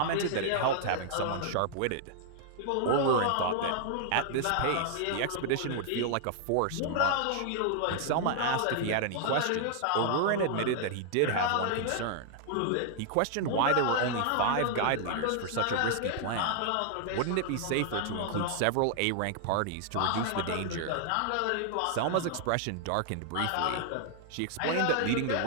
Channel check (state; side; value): different; both; correlation -0.01